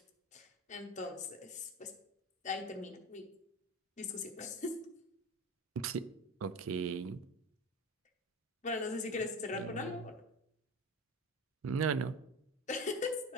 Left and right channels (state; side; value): normal; both; correlation 0.28